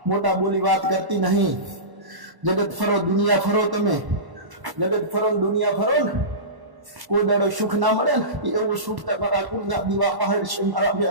મોટા બોલી વાત કરતી નહીં. જગત ફરો, દુનિયા ફરો. તમે જગત ફરો ને દુનિયા ફરો ને, કોઈ દાડો સુખ ના મળે ને એવું સુખ તમારા કુળના દીવા પહાડ છે મારા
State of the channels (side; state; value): left; late; 1.1 ms